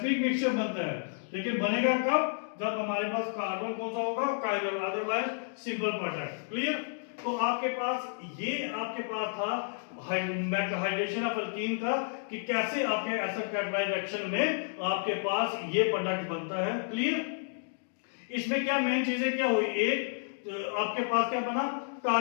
मिक्सचर बनता है। लेकिन बनेगा कब, जब हमारे पास कार्बन कौन सा होगा, chiral, otherwise simple product. Clear. तो आपके पास था हाइड्रेशन ऑफ एल्कीन का, कि कैसे आपके एसिड कैटालाइज रिएक्शन में आपके पास ये प्रोडक्ट बनता है। क्लियर। इसमें क्या मेन चीजें क्या हुई, एक आपके पास क्या बना,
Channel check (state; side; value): silent; right; digital silence